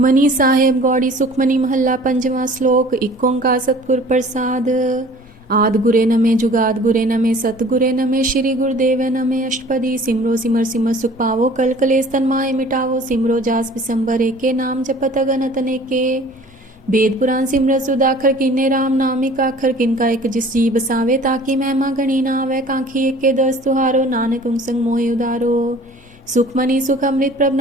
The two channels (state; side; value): normal; both; correlation 0.48